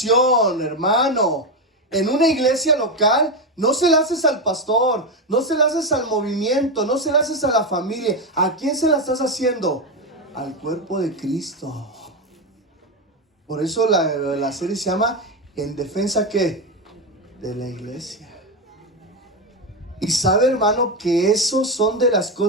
hermano, en una iglesia local, no se la haces al pastor, no se la haces al movimiento, no se la haces a la familia. ¿A quién se la estás haciendo? Al cuerpo de Cristo. Por eso la serie se llama ¿En defensa qué? De la iglesia. Y sabe, hermano, que eso son de las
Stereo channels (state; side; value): normal; both; correlation 0.10